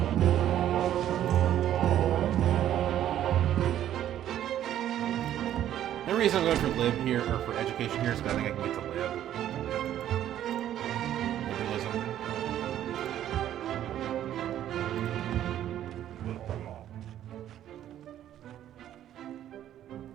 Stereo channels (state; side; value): quieter; left; 11.5 dB